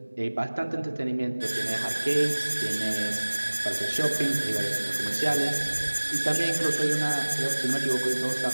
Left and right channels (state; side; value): inverted; both; correlation -1.00